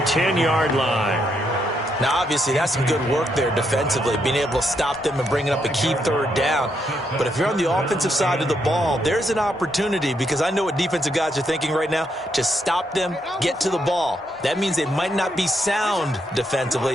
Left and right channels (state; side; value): normal; both; correlation 0.78